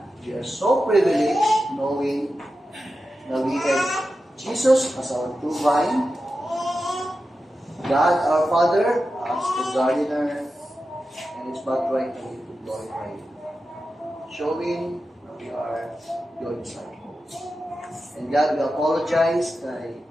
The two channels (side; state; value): both; normal; correlation 0.92